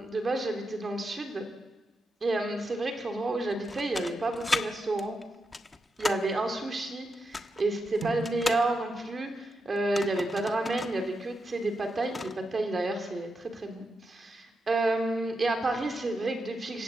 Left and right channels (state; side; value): normal; both; correlation 0.86